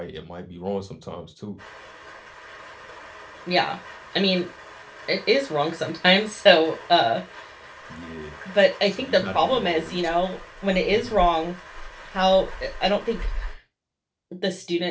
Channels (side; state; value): both; identical; correlation 1.00